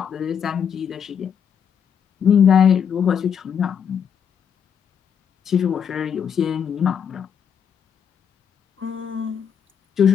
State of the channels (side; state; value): right; quieter; 7.8 dB